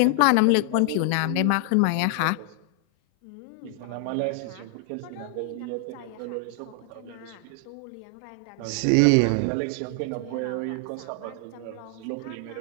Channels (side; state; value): both; different; correlation 0.00